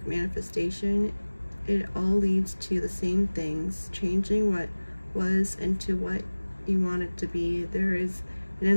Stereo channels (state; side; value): inverted; both; correlation -1.00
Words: manifestation, it all leads to the same things, changing what was into what you want it to be. There is an